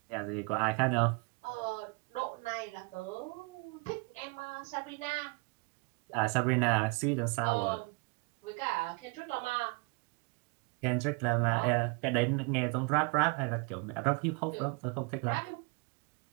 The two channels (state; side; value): quieter; left; 30.5 dB